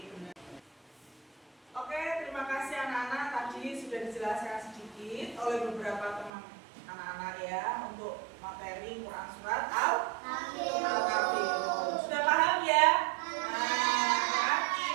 Oke, terima kasih anak-anak. Tadi sudah dijelaskan sedikit oleh beberapa teman anak-anak ya untuk materi Quran surat Al-Kafirun. Sudah paham ya? Nah,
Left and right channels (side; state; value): left; drops out; at 6.3 s